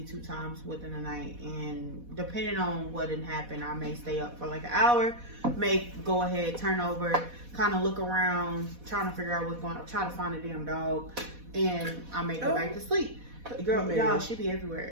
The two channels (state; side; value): late; left; 4.1 ms